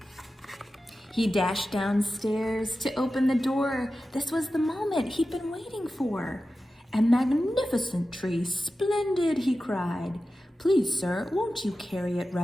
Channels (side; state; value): both; normal; correlation 0.93